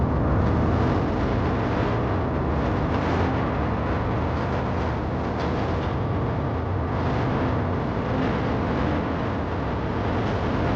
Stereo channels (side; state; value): both; identical; correlation 1.00